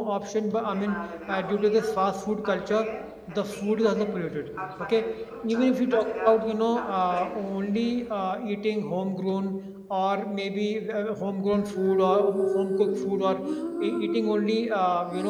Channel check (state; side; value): identical; both; correlation 1.00